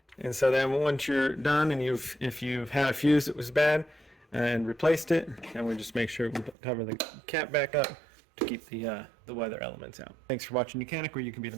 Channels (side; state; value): left; drops out; at 6.6 s